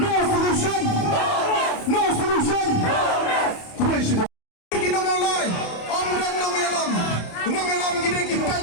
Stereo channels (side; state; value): right; late; 28 ms